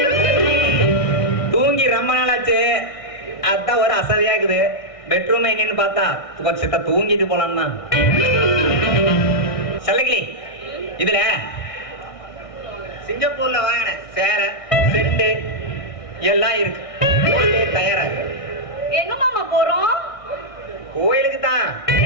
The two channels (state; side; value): late; right; 1.6 ms